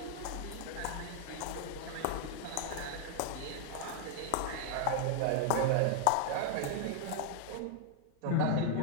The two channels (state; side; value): different; both; correlation 0.00